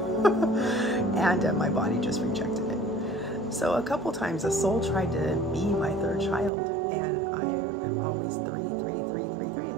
And my body just rejected it. So a couple times a soul tried to be my third child, and I am always 3, 3, 3, 3, 3.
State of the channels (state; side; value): drops out; left; at 6.5 s